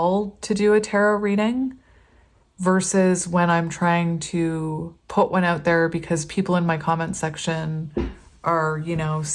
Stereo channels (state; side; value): identical; both; correlation 1.00